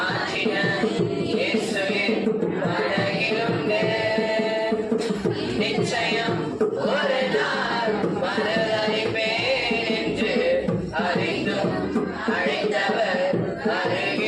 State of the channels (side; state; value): both; identical; correlation 1.00